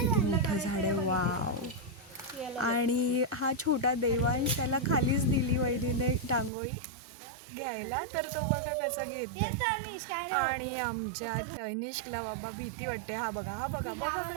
मोठं झाड आहे, वाव। आणि हा छोटा देवांश, त्याला खालीच दिली वहिनीने टांगोळी घ्यायला, तर तो बघा कसं घेतोय। आणि आमच्या तनिष्कला बाबा भीती वाटते। हा बघा बघा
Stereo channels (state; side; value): drops out; left; at 6.5 s